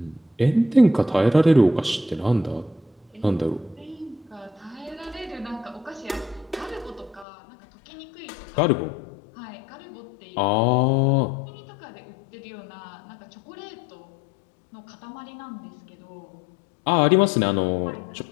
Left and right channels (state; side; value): drops out; right; at 7.2 s